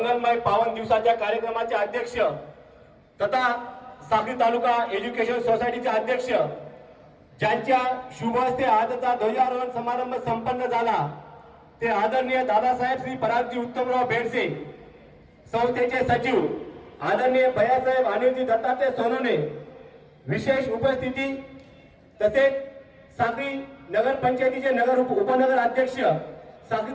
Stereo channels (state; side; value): identical; both; correlation 1.00